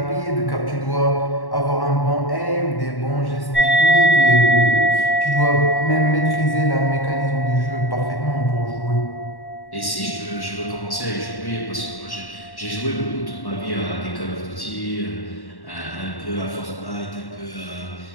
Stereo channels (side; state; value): right; late; 1.1 ms